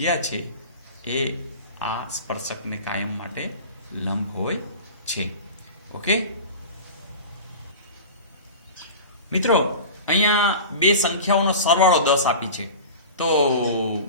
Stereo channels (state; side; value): inverted; both; correlation -0.34